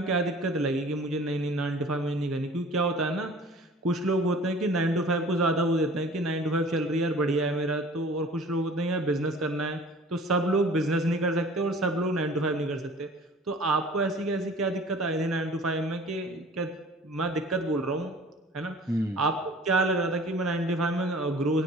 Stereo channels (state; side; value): normal; both; correlation 0.46